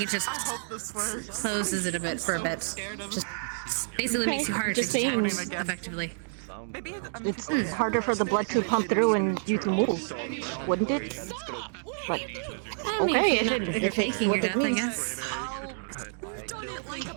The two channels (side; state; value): left; silent; digital silence